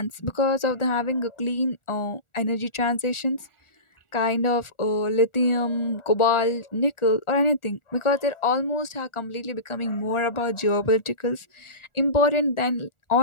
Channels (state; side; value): late; right; 1.4 ms